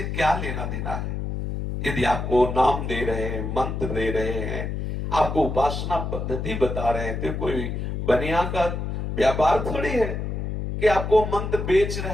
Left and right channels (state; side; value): noise; left; hum, 3 dB below the sound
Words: क्या लेना देना है। यदि आपको नाम दे रहे हैं, मंत्र दे रहे हैं, आपको उपासना पद्धति बता रहे हैं, तो कोई बनिया का व्यापार थोड़ी है कि आपको मंत्र बेच